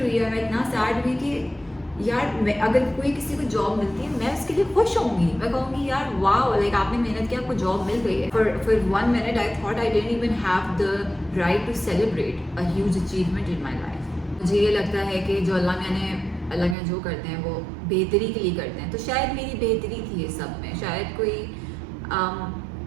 हुई और मैं इतना सैड हुई कि यार मैं, अगर कोई किसी को जॉब मिलती है मैं उसके लिए खुश होंगी, मैं कहूँगी यार वाह, लाइक आपने मेहनत की, आपको जॉब मिल गई है। For 1 minute I thought I didn't even have the right to celebrate a huge achievement in my life. मुझे ये लगता है कि जो अल्लाह ने जो करते हैं वो बेहतरी के लिए करते हैं, तो शायद मेरी बेहतरी थी ये सब में, शायद कोई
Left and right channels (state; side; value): drops out; left; at 16.8 s